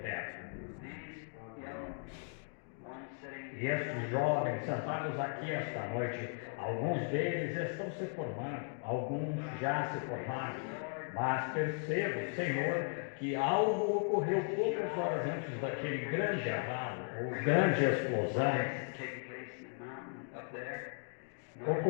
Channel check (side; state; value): right; silent; 53 dB below the other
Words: E estes jovens sentados aqui esta noite, alguns deles estão se formando, alguns já se formaram, mas percebo, Senhor, que algo ocorreu poucas horas antes daquele grande abalo, ou grande explosão,